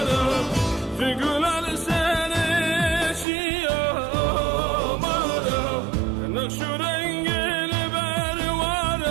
figürler seni şiyam varım. Nakşu rengini ver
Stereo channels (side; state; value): left; drops out; at 3.2 s